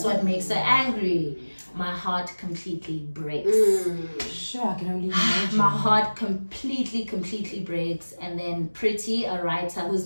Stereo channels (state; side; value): inverted; both; correlation -1.00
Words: what makes her angry. My heart completely breaks. Sure, I can only imagine. My heart completely breaks. And then Pretty, a writer